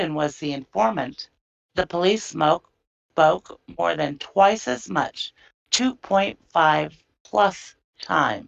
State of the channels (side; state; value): both; identical; correlation 1.00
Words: was the informant, the police spoke more than twice as much, 2.5 plus